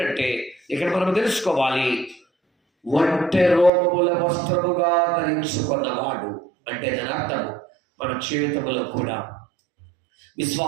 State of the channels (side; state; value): left; drops out; at 3.7 s